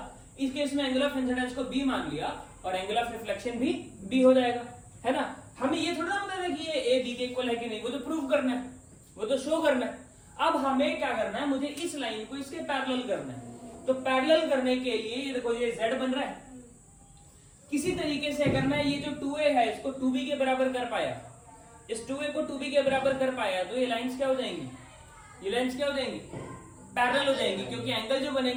इस केस में एंगल ऑफ इंसिडेंस को बी मान लिया और एंगल ऑफ रिफ्लेक्शन भी बी हो जाएगा, है ना? हमें ये थोड़ा पता है कि ये ए बी के इक्वल है कि नहीं, वो तो प्रूव करना है, वो तो शो करना है। अब हमें क्या करना है, मुझे इस लाइन को इसके पैरेलल करना है। तो पैरेलल करने के लिए ये देखो, ये z बन रहा है। किसी तरीके से अगर मैं ये जो 2a है इसको 2b के बराबर कर पाया, इस 2a को 2b के बराबर कर पाया, तो ये लाइंस क्या हो जाएंगी? ये लाइंस क्या हो जाएंगी? पैरेलल हो जाएंगी, क्योंकि एंगल जो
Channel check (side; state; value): both; identical; correlation 1.00